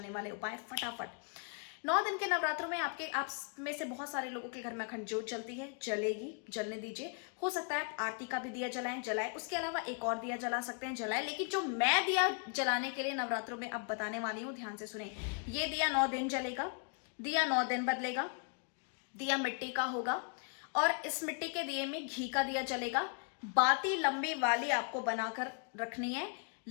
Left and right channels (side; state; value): right; quieter; 39.1 dB